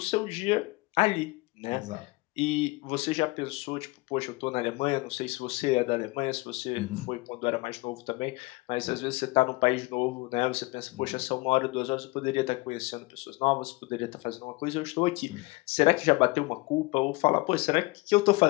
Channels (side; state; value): right; quieter; 23.6 dB